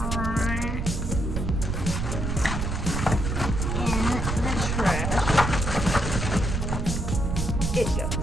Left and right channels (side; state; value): right; noise; rumble, 1 dB below the sound